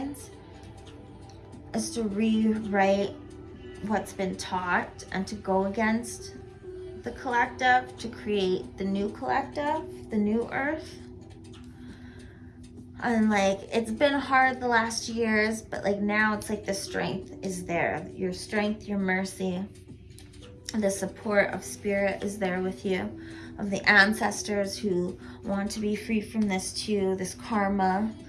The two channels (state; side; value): identical; both; correlation 1.00